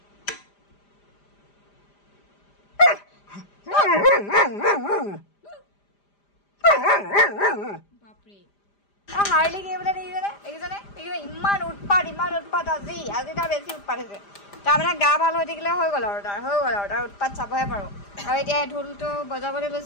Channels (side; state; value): right; late; 5.0 ms